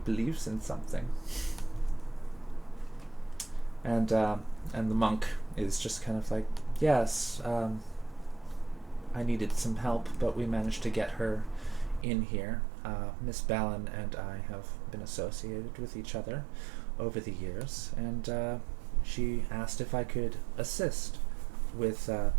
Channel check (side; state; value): left; drops out; at 12.1 s